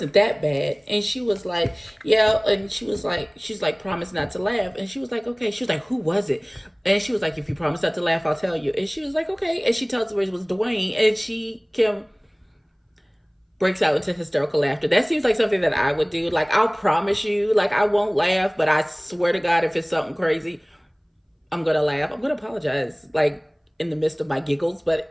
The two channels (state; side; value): identical; both; correlation 1.00